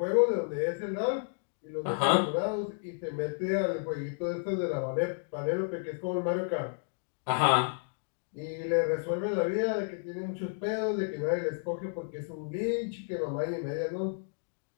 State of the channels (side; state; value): right; silent; digital silence